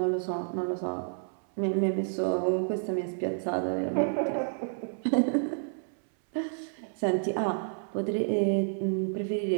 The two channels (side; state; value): left; silent; 58 dB below the other